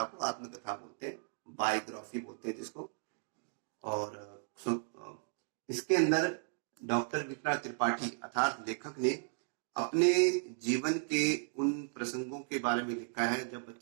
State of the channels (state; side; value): silent; left; digital silence